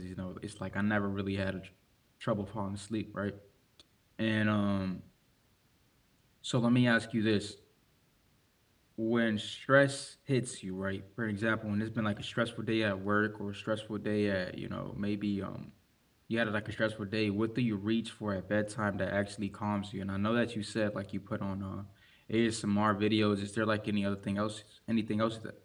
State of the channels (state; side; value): identical; both; correlation 1.00